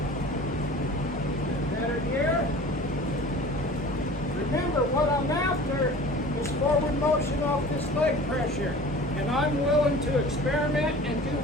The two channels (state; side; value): normal; both; correlation 0.41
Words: Better here. Remember, what I'm after is forward motion off this leg pressure. And I'm willing to experiment and do